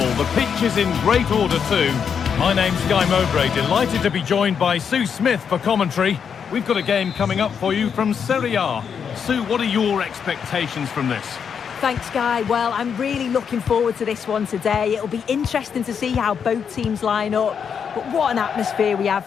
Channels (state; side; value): quieter; right; 7.1 dB